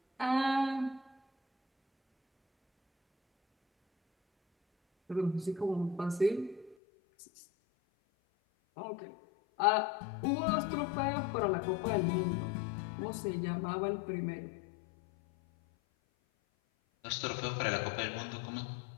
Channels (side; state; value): right; drops out; at 6.8 s